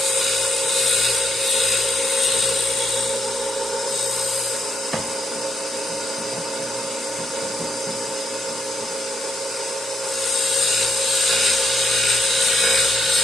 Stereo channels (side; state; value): both; normal; correlation 0.77